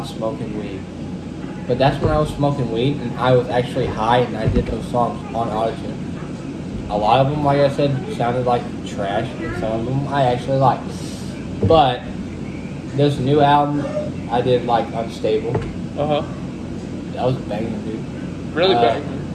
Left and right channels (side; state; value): both; identical; correlation 1.00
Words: smoking weed. But that's when I was smoking weed and I was actually high and I did those songs on autotune. A lot of them, like I said, sounded like trash, and some of them I actually liked. But this new album, I did like Unstable. Uh-huh. That was a banger, dude. Really bad.